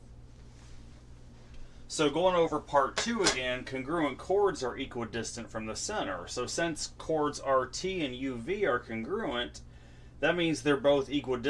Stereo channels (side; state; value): both; identical; correlation 1.00